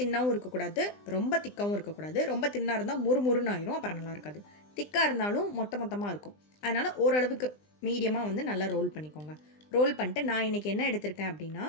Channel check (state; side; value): late; right; 20 ms